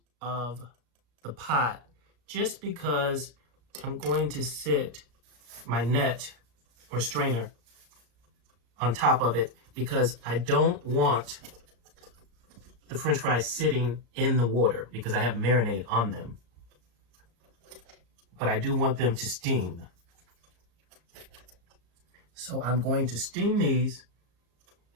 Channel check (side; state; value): left; late; 34 ms